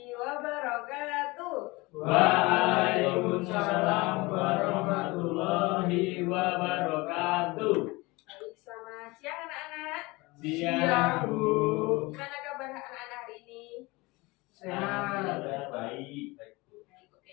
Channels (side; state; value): right; quieter; 23.2 dB